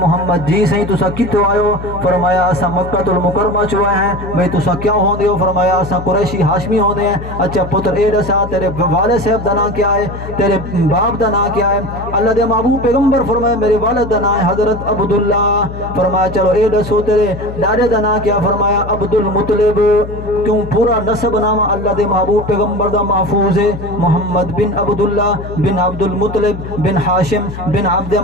محمد. جی صحیح تسا کتوں آئے؟ فرمایا اسا مکہ المکرمہ چوئے ہیں. بھئی تسا کیا ہوندے ہو؟ فرمایا اسا قریشی ہاشمی ہوندے ہیں. اچھا پتر اے دسا تیرے والد صاحب دا نام کیا ہے؟ تیرے باپ دا نام کیا ہے؟ اللہ دے محبوب پیغمبر فرمایا میرے والد دا نام ہے حضرت عبداللہ. فرمایا چلو اے دسو تیرے ڈاڈے دا نام کیا؟ فرمایا عبد المطلب. کیوں پورا نسب نام اللہ دے محبوب پیغمبر دا محفوظ ہے. محمد بن عبداللہ بن عبد المطلب بن ہاشم بن عبد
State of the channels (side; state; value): left; noise; hum, 10 dB below the sound